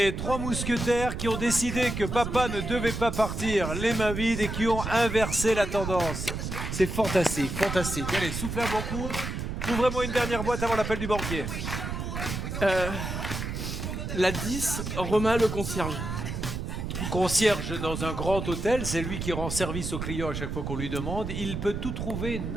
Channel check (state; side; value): noise; right; rumble, 4 dB below the sound